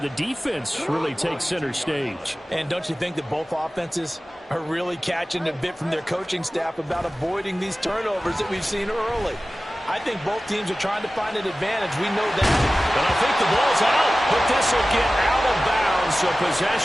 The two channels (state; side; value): normal; both; correlation 0.96